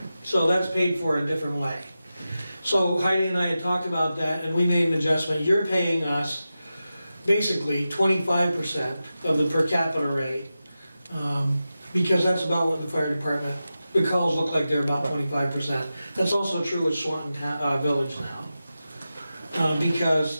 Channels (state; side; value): inverted; both; correlation -0.93